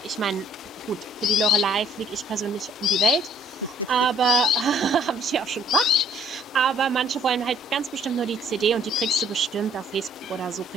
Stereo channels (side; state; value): both; normal; correlation 0.62